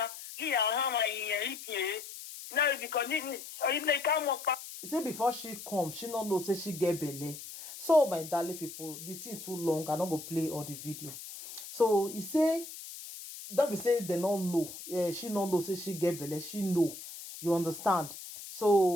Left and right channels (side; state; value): left; noise; hiss, 12 dB below the sound